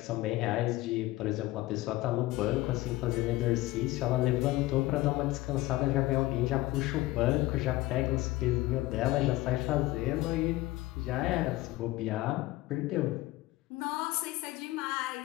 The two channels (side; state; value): right; quieter; 18.2 dB